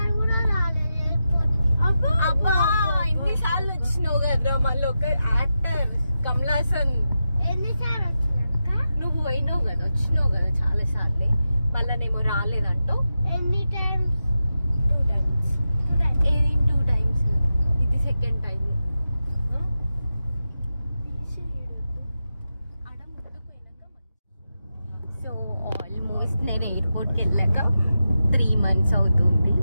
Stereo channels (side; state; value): both; inverted; correlation -0.90